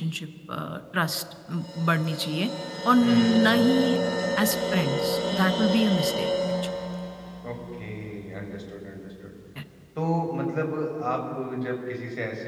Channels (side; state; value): both; identical; correlation 1.00